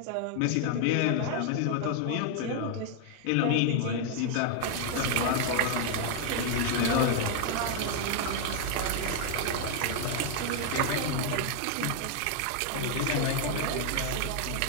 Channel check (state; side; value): different; both; correlation 0.00